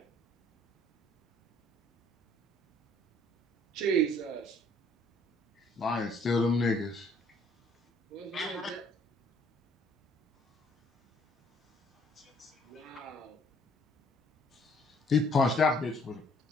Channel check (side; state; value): both; normal; correlation 0.61